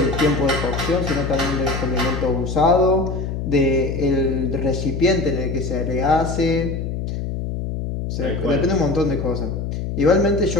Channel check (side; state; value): left; noise; hum, 4 dB below the sound